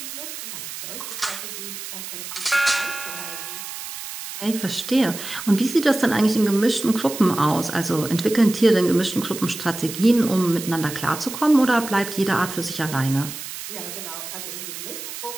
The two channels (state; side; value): noise; right; hiss, 9 dB below the sound